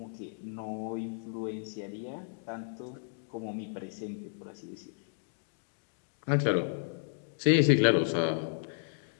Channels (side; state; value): right; silent; digital silence